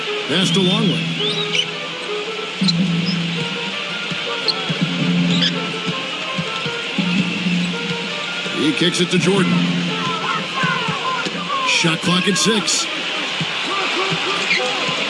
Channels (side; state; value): both; identical; correlation 1.00